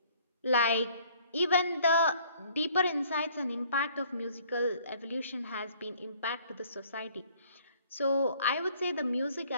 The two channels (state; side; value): inverted; both; correlation -0.58